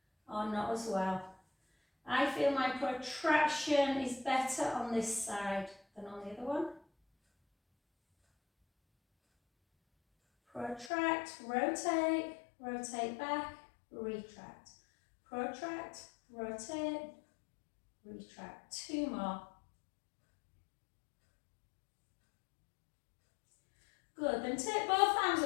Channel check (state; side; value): drops out; right; at 10.9 s